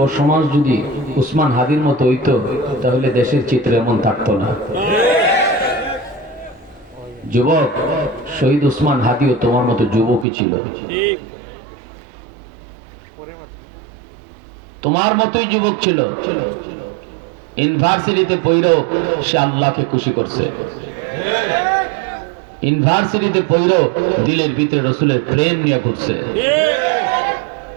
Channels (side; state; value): left; drops out; at 10.2 s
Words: সমাজ যদি উসমান হাদির মতো হইতো তাহলে দেশের চিত্র এমন থাকতো না। যুবক শহীদ উসমান হাদিও তোমার মতো যুবকই ছিল, তোমার মতোই যুবক ছিল। ইউনিভার্সিটিতে পড়েও সে আল্লাহকে খুশি করছে, ইউনিভার্সিটিতে পড়েও দিলের ভিতরে রসুলের প্রেম নিয়ে ঘুরছে,